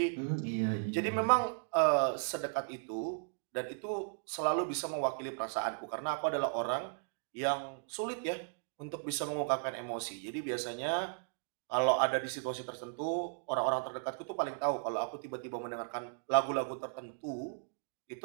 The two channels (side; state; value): left; silent; digital silence